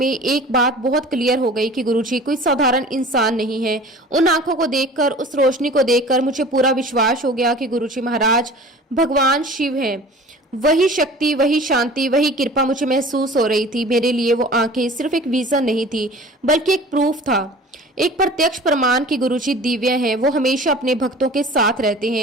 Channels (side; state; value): both; normal; correlation 0.43